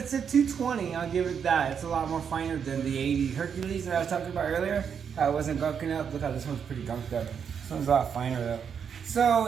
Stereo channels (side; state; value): left; quieter; 7.3 dB